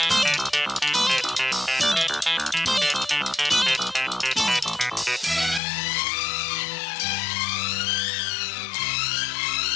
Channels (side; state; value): right; drops out; at 5.6 s